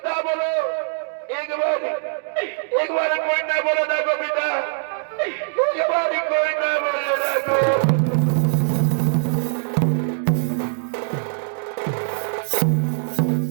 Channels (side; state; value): left; silent; digital silence